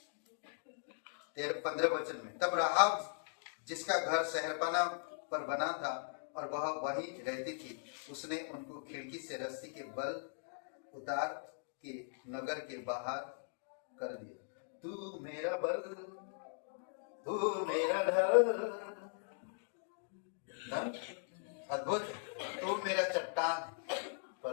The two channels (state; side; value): silent; right; digital silence